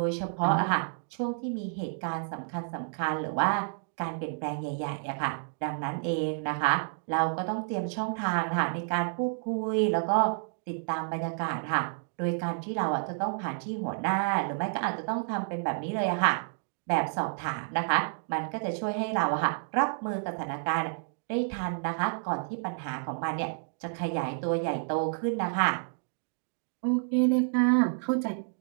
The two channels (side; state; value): left; silent; digital silence